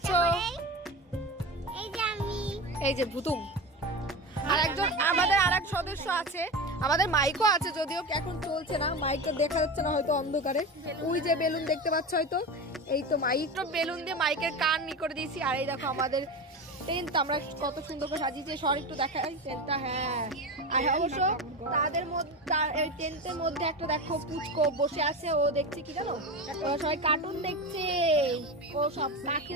এই যে ভুতুম, আর একজন আমাদের আরেক সদস্য আছে, আমাদের মাইকও আছে, যদিও এখন চলছে না, মাইকটা দেখা যাচ্ছে না হয়তো অন্ধকারে। ওই যে বেলুন দেখতে পাচ্ছ হয়তো, এই তো মাইক বেলুন দিয়ে মাইকের কান ই করে দিয়েছি। আর এই দেখো আমাদের টেন্ট আমরা কত সুন্দর করে সাজিয়েছি। সর একটু দেখাই টেন্টটা। হ্যাঁ, আর অবশ্য তাদের মধ্যে টেন্টের মধ্যে একটা দেখো পুচকো বসে আছে, ও দেখছে কি জানো, সবাই কার্টুন দেখছে। ও সব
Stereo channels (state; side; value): normal; both; correlation 0.24